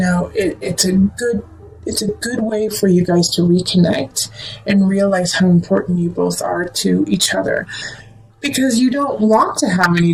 it's a good way for you guys to reconnect and realize how important you both are to each other. Because you don't want to have any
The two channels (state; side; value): identical; both; correlation 1.00